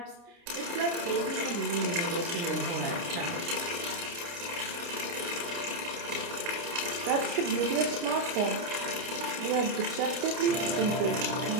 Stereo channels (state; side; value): late; left; 29 ms